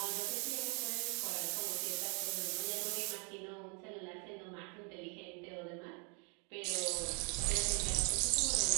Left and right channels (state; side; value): quieter; left; 35.9 dB